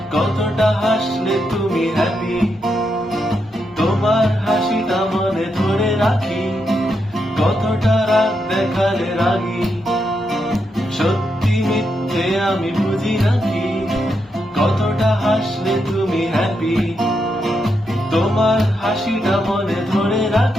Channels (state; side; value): normal; both; correlation 0.82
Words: কতটা হাসলে তুমি হ্যাপি। তোমার হাসিটা মনে ধরে রাখি, কতটা রাগ দেখালে রাগি। সত্যি মিথ্যে আমি বুঝি নাকি, কতটা হাসলে তুমি হ্যাপি। তোমার হাসিটা মনে ধরে